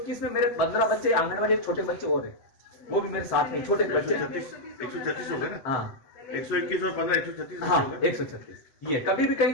में मेरे 15 बच्चे आंगनबाड़ी छोटे बच्चे और है, वो भी मेरे साथ में छोटे बच्चे। 136 हो गए ना? हाँ, 121 और 15 136 हाँ, 136। ये कभी भी कहीं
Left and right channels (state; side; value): late; right; 8.1 ms